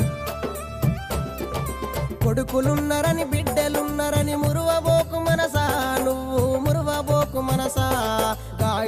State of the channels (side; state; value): both; identical; correlation 1.00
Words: కొడుకులున్నరని బిడ్డలున్నరని మురువబోకు మనసా, నువ్వు మురువబోకు మనసా.